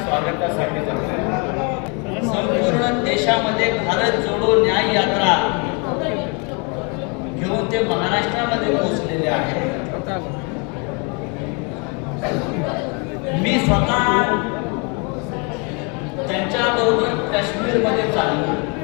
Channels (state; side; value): quieter; right; 33.6 dB